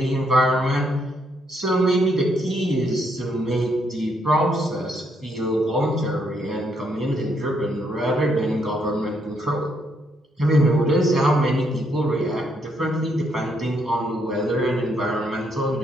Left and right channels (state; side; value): normal; both; correlation 0.74